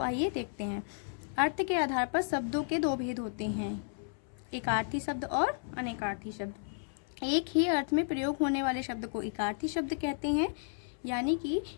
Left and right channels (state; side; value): silent; right; 56 dB below the other